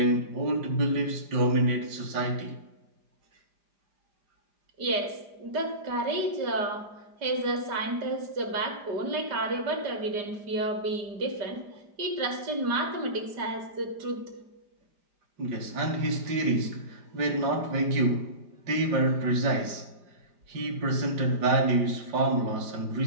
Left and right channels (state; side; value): late; left; 5.0 ms